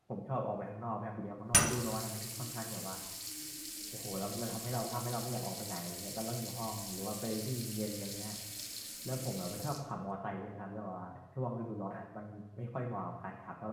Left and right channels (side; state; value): both; identical; correlation 1.00